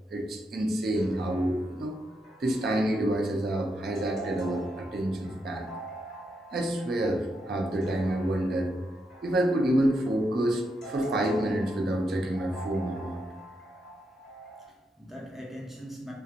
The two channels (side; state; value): both; normal; correlation 0.82